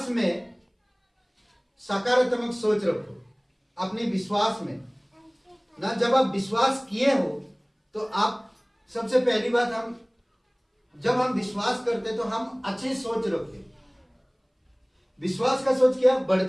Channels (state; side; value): identical; both; correlation 1.00